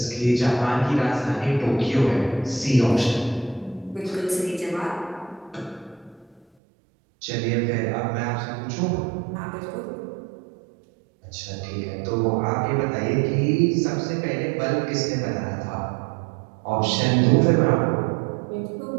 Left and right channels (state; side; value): drops out; left; at 6.5 s